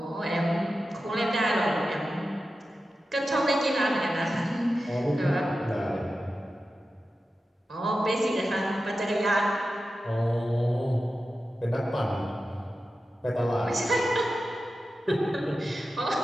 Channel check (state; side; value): normal; both; correlation 0.93